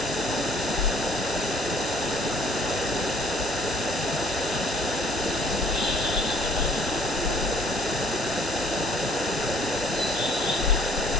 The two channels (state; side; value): normal; both; correlation 0.58